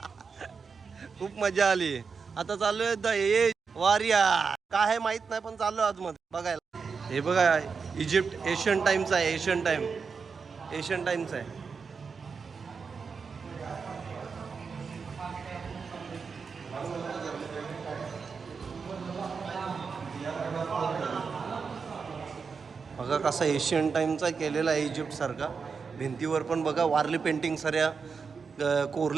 खूप मजा आली. आता चाललोय द एज वारिया काय आहे माहित नाही पण चाललोय आतमध्ये बघायला. हे बघा इजिप्त एशियन टाइमचा आहे. एशियन टाइमचा आहे. बघा कसा एशियन टाइमचा केलेला आहे इजिप्त सारखा. भिंतीवर पण बघा वारली पेंटिंग साऱ्या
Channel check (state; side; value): quieter; left; 5.4 dB